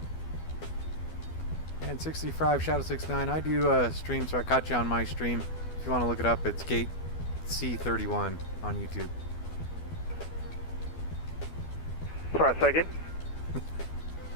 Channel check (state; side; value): late; right; 12 ms